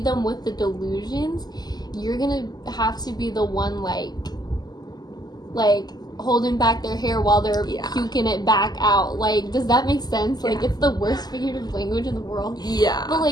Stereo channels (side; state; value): right; late; 0.20 ms